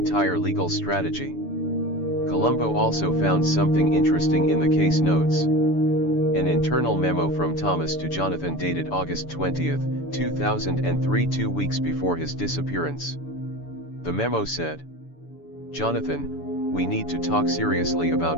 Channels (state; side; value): late; right; 6.9 ms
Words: legal strategy. Columbo also found something interesting in the case notes. An internal memo from Thomas to Jonathan dated August 20, 2003, 2 weeks before his disappearance. The memo said, "Jonathan, we need to talk seriously